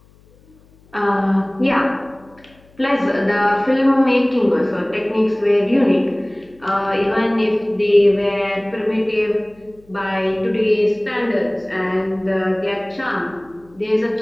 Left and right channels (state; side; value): noise; left; hum, 29 dB below the sound